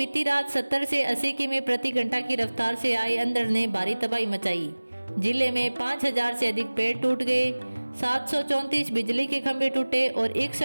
रात 70 से 80 किमी प्रति घंटा की रफ्तार से आई अंधड़ ने भारी तबाही मचाई। जिले में 5,000 से अधिक पेड़ टूट गए, 734 बिजली के खंभे टूटे और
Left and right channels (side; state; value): both; inverted; correlation -1.00